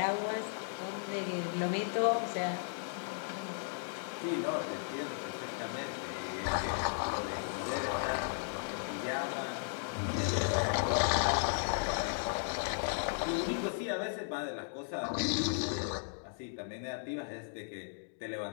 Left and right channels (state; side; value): silent; right; digital silence